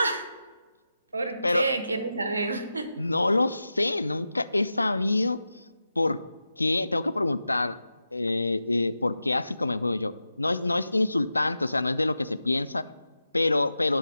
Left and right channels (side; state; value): both; inverted; correlation -0.92